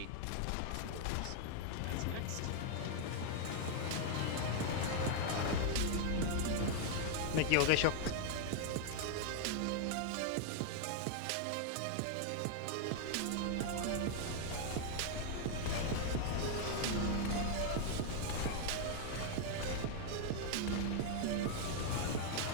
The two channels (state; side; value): different; both; correlation 0.00